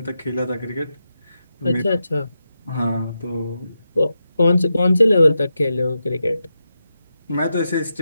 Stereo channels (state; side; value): inverted; both; correlation -0.88